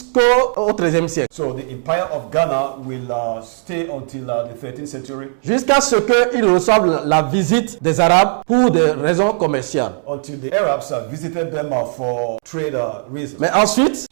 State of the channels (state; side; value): silent; left; digital silence